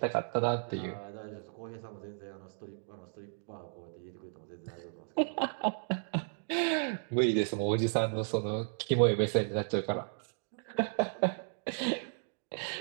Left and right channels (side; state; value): left; silent; digital silence